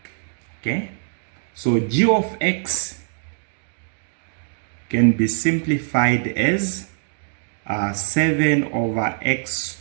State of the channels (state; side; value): silent; left; digital silence